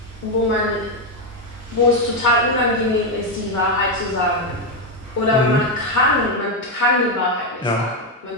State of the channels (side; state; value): both; normal; correlation 0.05